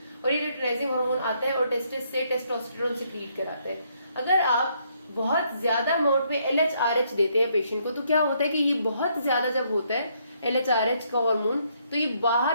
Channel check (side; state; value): both; inverted; correlation -0.72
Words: और ये ल्यूटिनाइजिंग हार्मोन आता है और टेस्टिस से टेस्टोस्टेरोन सिक्रीट कराता है। अगर आप बहुत ज्यादा अमाउंट में LHRH देते हैं पेशेंट को तो क्या होता है कि ये बहुत ज्यादा जब होता है LHRH का हार्मोन तो ये